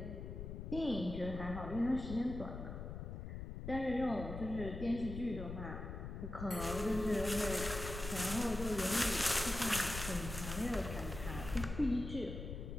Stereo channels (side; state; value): left; noise; rumble, 7 dB below the sound